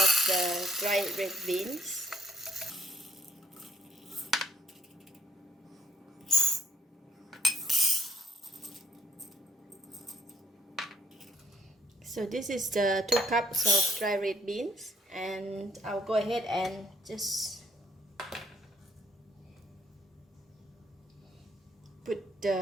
the dried red beans. So this is the 2 cups of dry red beans, and I'll go ahead and just put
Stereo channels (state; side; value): normal; both; correlation 0.64